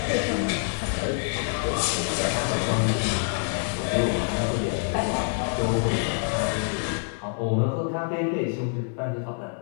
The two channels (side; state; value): right; silent; digital silence